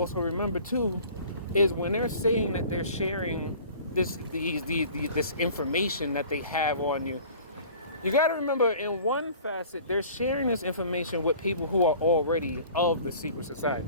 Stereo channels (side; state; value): both; inverted; correlation -0.46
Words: remember too, is when they're saying that they're sharing this information that they have on you, you got to remember, in one facet, they're sharing this information with people who are already of the secret